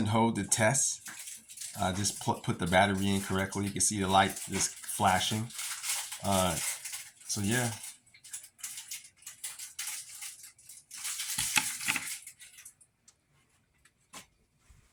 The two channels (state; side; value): identical; both; correlation 1.00